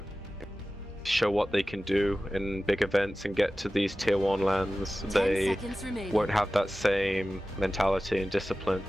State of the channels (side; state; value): both; normal; correlation 0.96